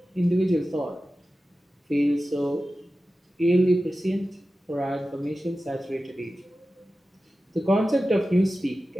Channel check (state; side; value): normal; both; correlation 0.94